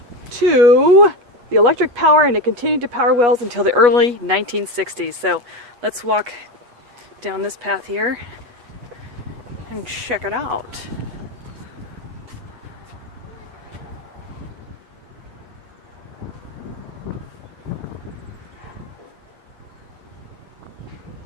to the electric power, and it continued to power wells until the early 1960s. So let's walk down this path here and check it out.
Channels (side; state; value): left; late; 8.2 ms